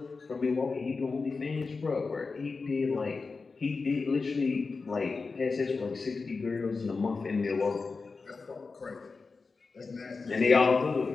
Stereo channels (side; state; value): right; quieter; 4.3 dB